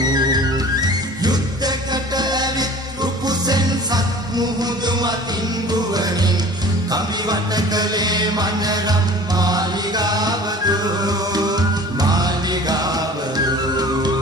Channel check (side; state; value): both; normal; correlation 0.43